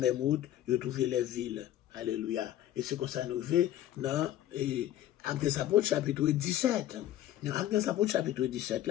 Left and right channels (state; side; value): quieter; right; 12.6 dB